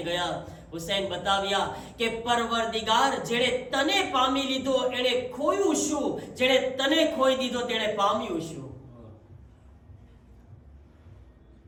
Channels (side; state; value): both; identical; correlation 1.00